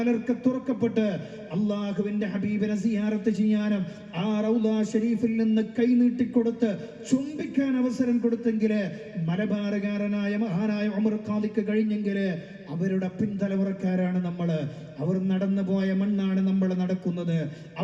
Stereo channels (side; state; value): both; identical; correlation 1.00